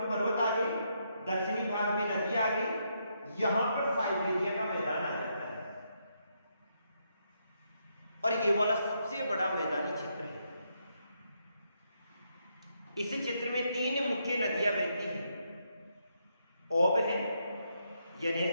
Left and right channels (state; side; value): inverted; both; correlation -0.78